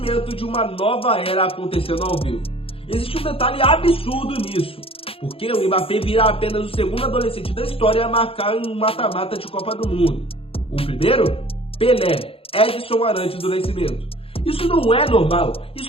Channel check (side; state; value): right; late; 0.27 ms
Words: de uma nova era acontecendo ao vivo. Existe um detalhe absurdo nisso, porque o Mbappé vira apenas o segundo adolescente da história a marcar um mata-mata de Copa do Mundo. O primeiro? Pelé, Edson Arantes do Nascimento. Isso não é normal,